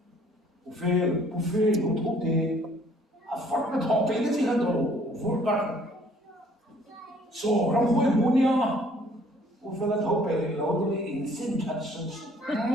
buffet nó thuộc thì phát cái thọ cái gì hết rồi vốn cả số làm vui vui nha buffet là thọ cái lâu thì in xin thật sự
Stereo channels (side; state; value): both; normal; correlation 0.59